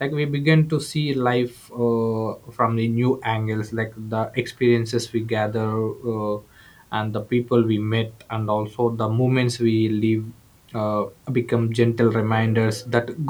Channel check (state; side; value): identical; both; correlation 1.00